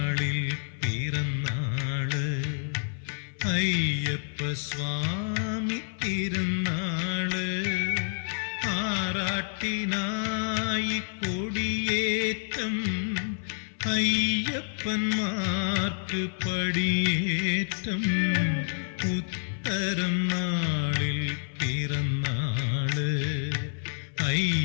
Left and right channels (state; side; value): silent; right; 58 dB below the other